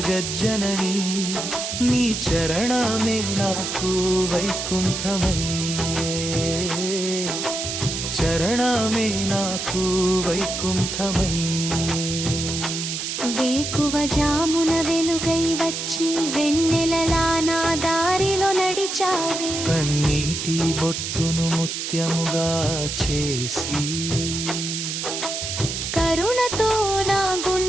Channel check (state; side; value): noise; right; hiss, 4 dB below the sound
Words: నీ చరణమే నాకు వైకుంఠమయ్యే. చరణమే నాకు వైకుంఠమయ్యే. వేకువ జామున వెలుగై వచ్చి వెన్నెలలా నా దారిలో నడిచావే. కన్నీటి బొట్టును ముత్యముగా చేసి కరుణతో నా